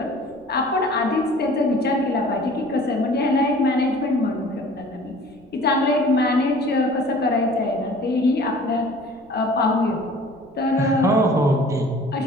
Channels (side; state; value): right; noise; rumble, 28 dB below the sound